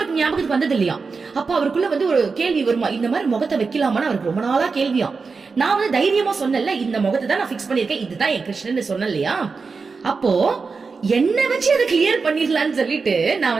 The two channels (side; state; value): left; quieter; 4.7 dB